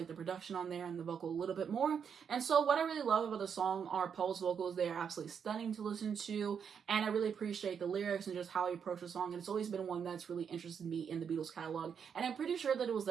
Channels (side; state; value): left; quieter; 7.2 dB